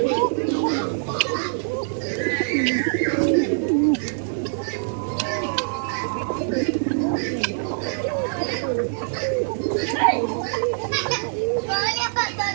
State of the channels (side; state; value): left; silent; digital silence